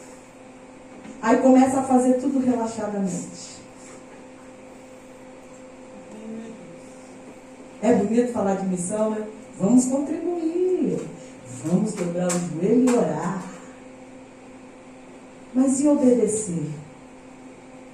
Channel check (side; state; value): both; identical; correlation 1.00